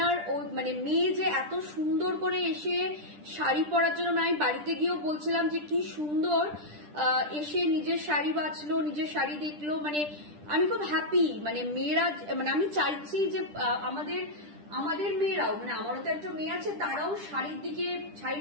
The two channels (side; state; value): left; late; 10 ms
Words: ওই মানে মেয়ে যে এত সুন্দর করে এসে শাড়ি পরার জন্য, আমি বাড়িতে গিয়েও বলছিলাম যে কি সুন্দর এসে নিজের শাড়ি বাছলো, নিজের শাড়ি দেখলো, মানে আমি খুব হ্যাপি। মানে মেয়েরা, মানে আমি চাইছি যে আমাদের মেয়েরাও, মানে আমারও তো একটা মেয়ে আছে, তারাও শাড়ির দিকে,